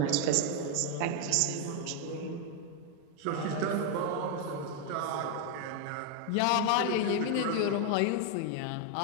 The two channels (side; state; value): both; different; correlation 0.01